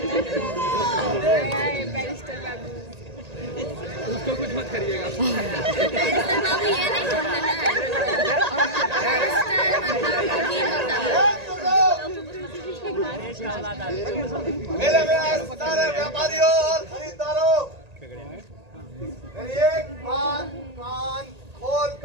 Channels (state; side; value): late; left; 1.8 ms